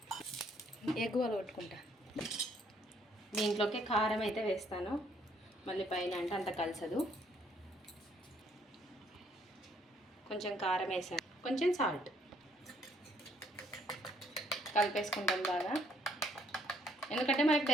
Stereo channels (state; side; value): normal; both; correlation 0.66